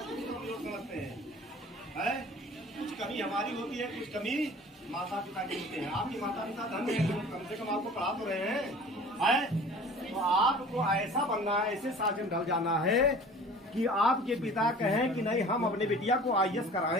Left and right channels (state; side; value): normal; both; correlation 0.44